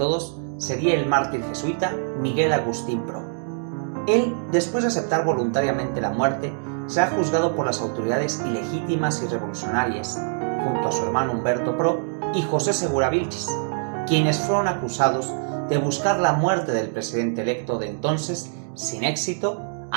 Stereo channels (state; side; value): silent; left; digital silence